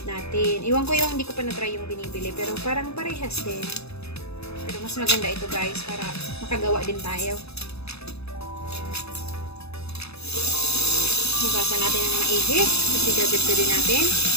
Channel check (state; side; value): late; right; 0.79 ms